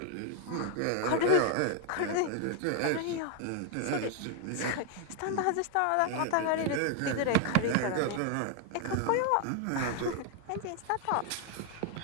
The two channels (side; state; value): both; different; correlation 0.00